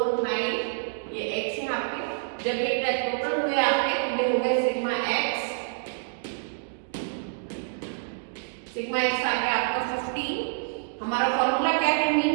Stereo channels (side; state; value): left; silent; digital silence